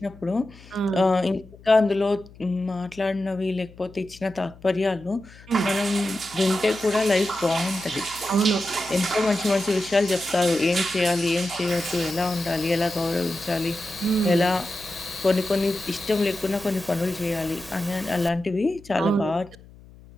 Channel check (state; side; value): noise; left; hum, 22 dB below the sound